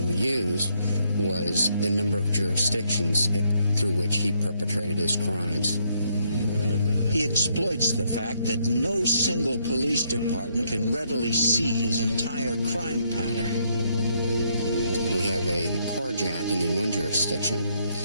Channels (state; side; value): inverted; both; correlation -0.73